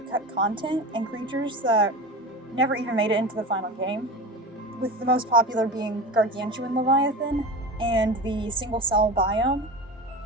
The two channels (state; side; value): normal; both; correlation 0.29